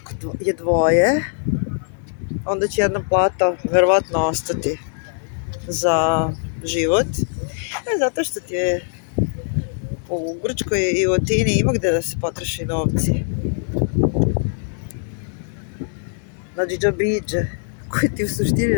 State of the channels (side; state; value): right; silent; digital silence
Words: je dvoje, onda će jedna plata verovatno ostati za život. Zato što ti je u Grčkoj i u Atini ima gde da se potroši novci. Znači džabriđe, koji ti u suštini